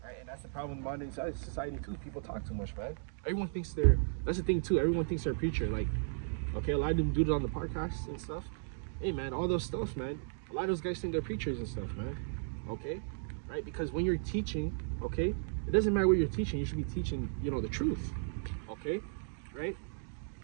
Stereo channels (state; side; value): silent; left; digital silence